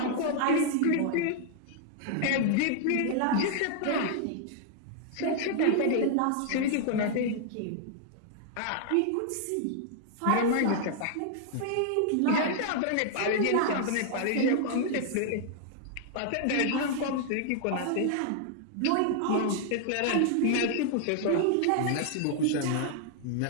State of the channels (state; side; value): different; both; correlation 0.00